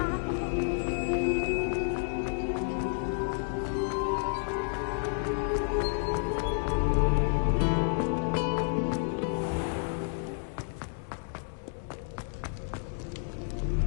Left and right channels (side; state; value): right; silent; 58 dB below the other